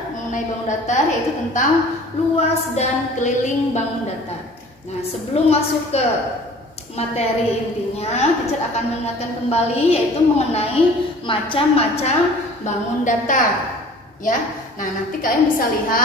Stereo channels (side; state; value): both; normal; correlation 0.48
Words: mengenai bangun datar, yaitu tentang luas dan keliling bangun datar. Nah, sebelum masuk ke materi intinya, teacher akan mengingatkan kembali yaitu mengenai macam-macam bangun datar ya. Nah, nanti kalian bisa